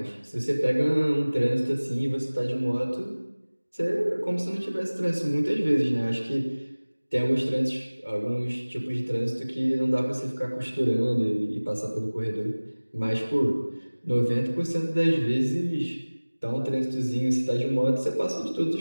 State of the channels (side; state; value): both; inverted; correlation -1.00